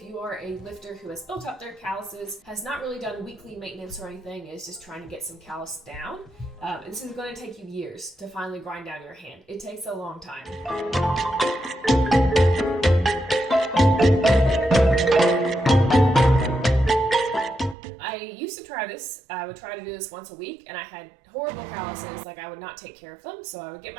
you are a lifter who has built up their calluses, has not really done weekly maintenance or anything, is just trying to get some callus down. This is going to take you years to finally grind down your hand. It takes a long time. I used to to try this, I would try to do this once a week, and I had horrible calluses, like I would not take care of them. So I would get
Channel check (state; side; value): drops out; left; at 17.8 s